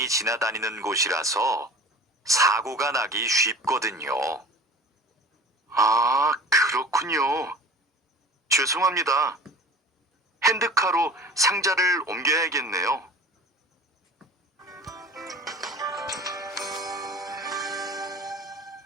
지나다니는 곳이라서 사고가 나기 쉽거든요. 아, 그렇군요. 죄송합니다. 핸드카로 상자를 옮겨야겠네요.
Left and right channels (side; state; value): both; normal; correlation 0.41